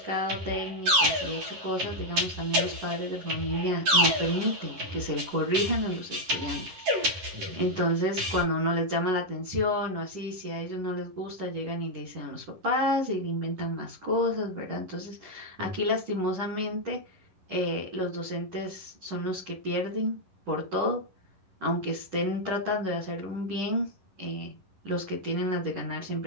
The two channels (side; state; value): left; late; 11 ms